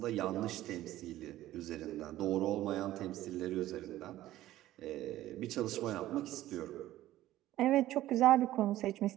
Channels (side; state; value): left; quieter; 14.7 dB